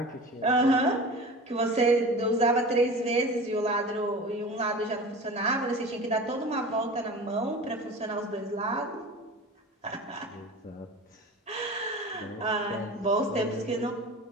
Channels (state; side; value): normal; both; correlation 0.35